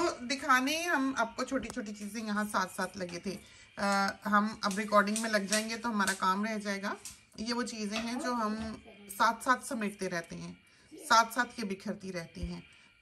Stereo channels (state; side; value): identical; both; correlation 1.00